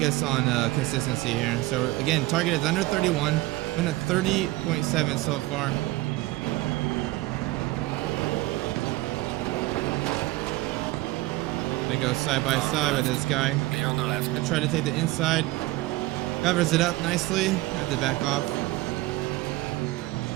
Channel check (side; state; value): left; quieter; 19.4 dB